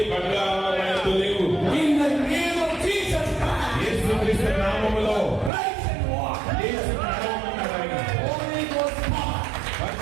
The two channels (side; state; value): left; drops out; at 5.5 s